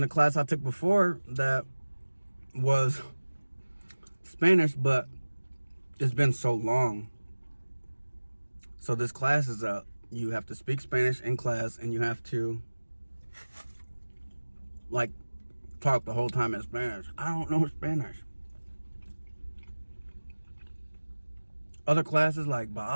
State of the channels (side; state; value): both; inverted; correlation -1.00